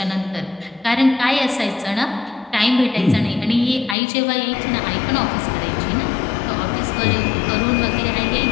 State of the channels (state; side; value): drops out; right; at 4.0 s